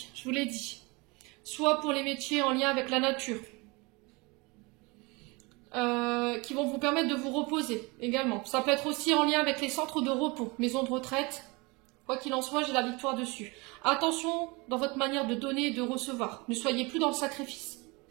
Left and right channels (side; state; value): left; quieter; 26.5 dB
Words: je vous l'ai dit, soit pour les métiers en lien avec la nature, qui vont vous permettre de vous reposer également. Ça peut être aussi en lien avec les centres de repos, maisons de retraite. Quoi qu'il en soit, j'ai la victoire dessus. Attention dans votre manière de donner et de recevoir. Ne soyez plus dans le sacrifice.